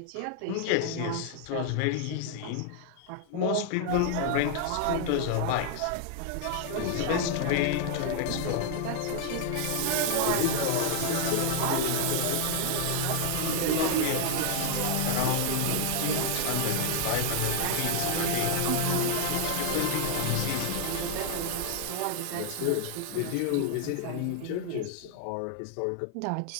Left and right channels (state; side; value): different; both; correlation 0.00